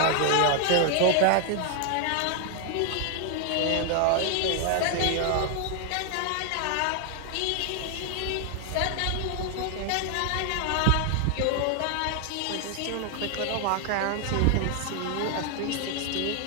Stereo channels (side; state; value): both; different; correlation 0.00